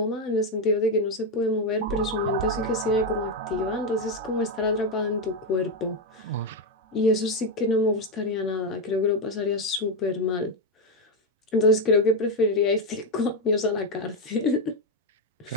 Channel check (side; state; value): both; normal; correlation 0.06